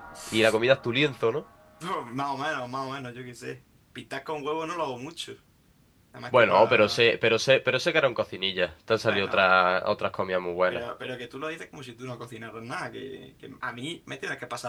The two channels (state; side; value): identical; both; correlation 1.00